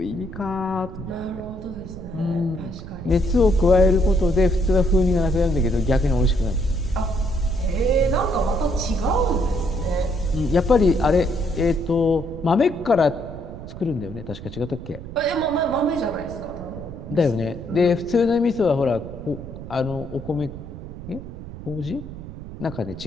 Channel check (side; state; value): right; noise; rumble, 12 dB below the sound